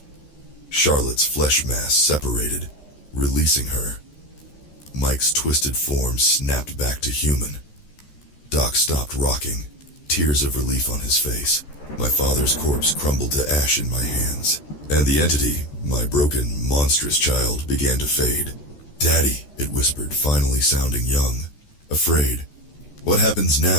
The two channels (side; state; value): right; late; 13 ms